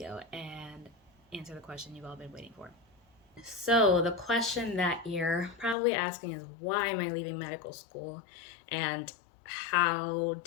and answer the question you've all been waiting for. So the question that you're probably asking is, why am I leaving medical school and how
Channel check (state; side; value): drops out; right; at 5.8 s